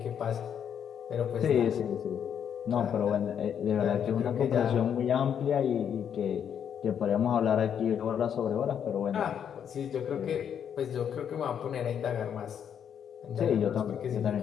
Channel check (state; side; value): quieter; right; 8.4 dB